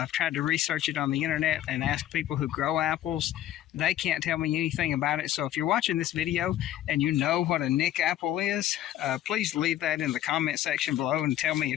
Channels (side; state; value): right; quieter; 12.6 dB